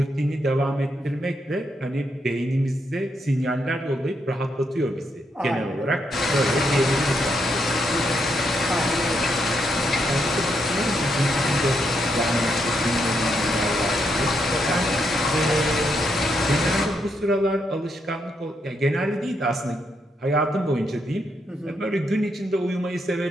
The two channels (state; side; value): normal; both; correlation 0.79